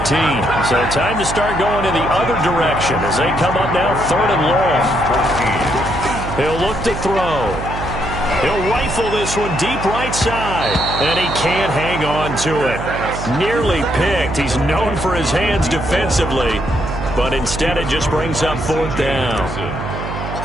So time to start going in the other direction as they come up now 3rd and long. He'll look to throw. He'll rifle this one deep right side, and he can't hang on to it. Nearly picked. He's known for his hands defensively, but instead it just brings up 4th down.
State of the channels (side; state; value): right; noise; hum, 7 dB below the sound